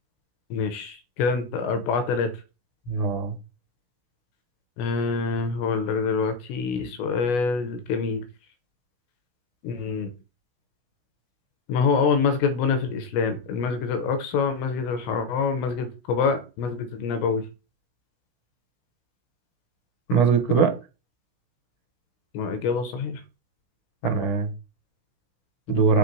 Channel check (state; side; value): late; right; 16 ms